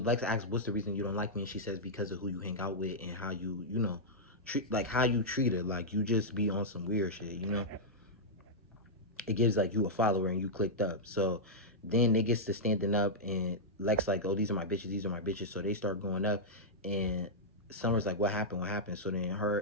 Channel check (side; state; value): both; normal; correlation -0.07